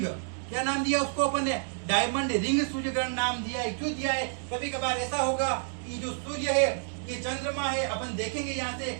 क्या नाम दिया उसको अपन ने? डायमंड रिंग सूर्य ग्रहण नाम दिया है। क्यों दिया है? कभी कभार ऐसा होगा कि जो सूर्य है, ये चंद्रमा है, अपन देखेंगे यहाँ से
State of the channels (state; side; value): silent; left; 58 dB below the other